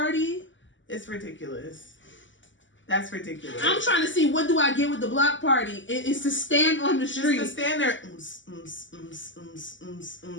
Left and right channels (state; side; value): late; right; 0.55 ms